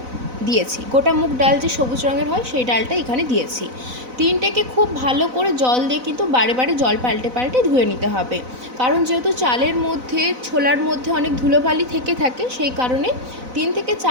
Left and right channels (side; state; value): left; late; 4.0 ms